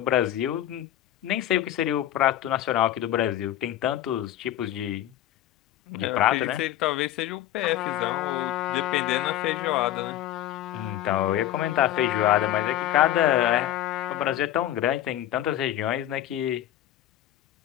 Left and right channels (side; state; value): right; quieter; 12.6 dB